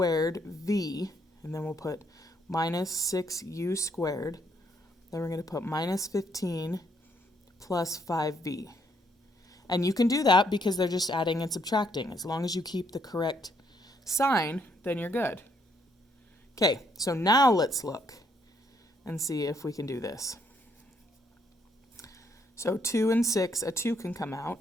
v, and then we'll put minus 6u squared. Then we're going to put minus 15 plus 5v. And you can do that because they're just adding and subtracting. As long as you keep the correct sign, then you're good. Okay, so now let's look and see if we can do this. So 2 and 6, a 2 can come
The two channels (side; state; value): both; normal; correlation 0.71